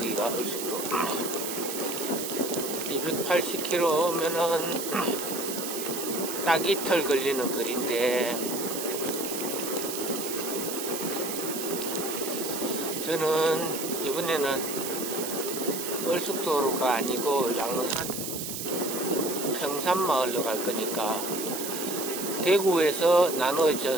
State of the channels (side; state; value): right; noise; hiss, 5 dB below the sound